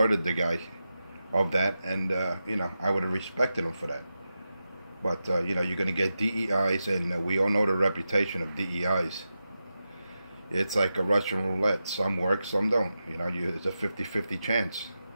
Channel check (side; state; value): both; inverted; correlation -0.90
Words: the guy of that. And, you know, I would have respected him for that. But, you know, you're going to get DEIs. And we all know the reputation of DEIs. It's like a Russian roulette. Some work, some don't. You know, it's a 50-50 chance.